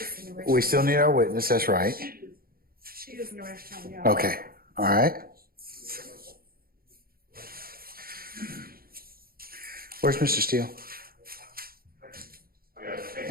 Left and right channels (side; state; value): left; late; 0.43 ms